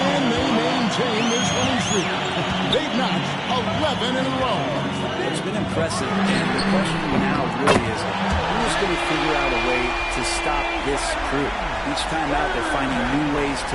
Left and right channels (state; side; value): identical; both; correlation 1.00